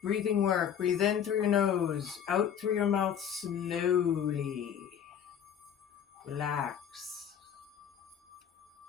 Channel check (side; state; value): right; quieter; 8.7 dB